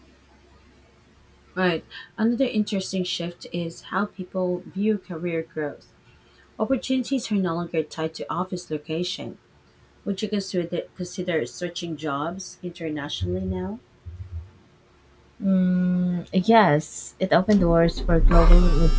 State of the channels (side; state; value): both; identical; correlation 1.00